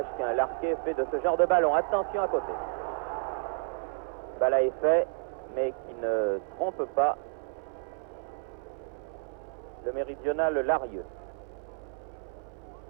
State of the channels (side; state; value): left; silent; 57 dB below the other